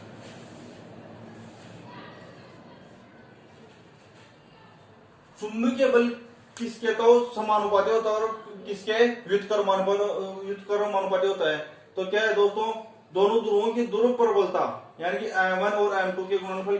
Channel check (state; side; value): identical; both; correlation 1.00